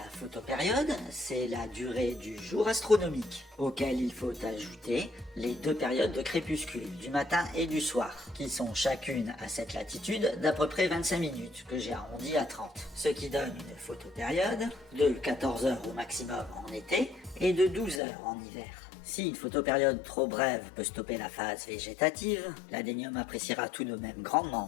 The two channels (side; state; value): right; drops out; at 18.0 s